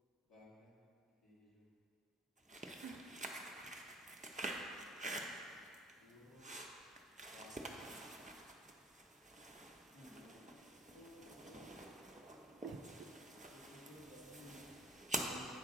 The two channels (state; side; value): normal; both; correlation 0.51